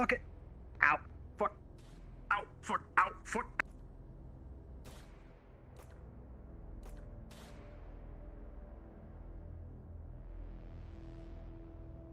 it. Ow. Fuck. Ow. Fuck. Ow. Fuck.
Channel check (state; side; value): identical; both; correlation 1.00